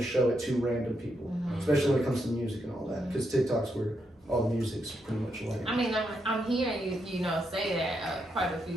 show it to random people, especially when it comes to music and all that, because TikTok's where all the music's pretty much like. I mean, I'm hearing you say that quite a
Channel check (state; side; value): normal; both; correlation 0.81